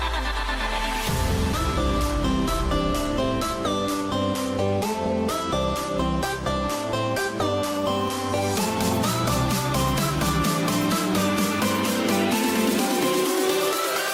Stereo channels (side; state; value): both; identical; correlation 1.00